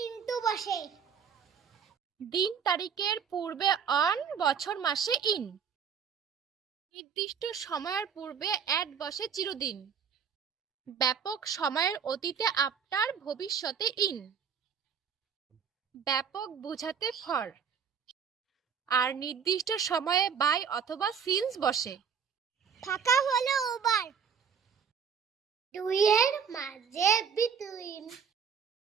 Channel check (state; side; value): quieter; left; 7.0 dB